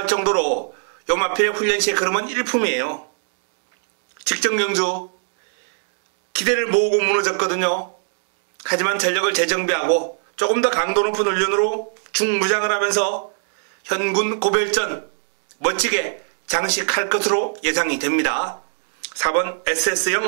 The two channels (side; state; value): left; silent; digital silence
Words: 정도로 요마필의 훈련 시의 걸음은 일품이에요. 직전 경주 기대를 모으고 무너졌거든요. 하지만 전력을 재정비하고 조금 더 강도 높은 훈련으로 중무장을 하면서 현군 고별전 멋지게 장식할 것으로 예상이 됩니다. 4번